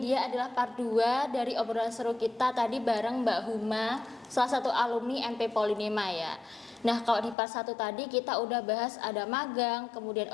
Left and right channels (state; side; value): drops out; right; at 7.4 s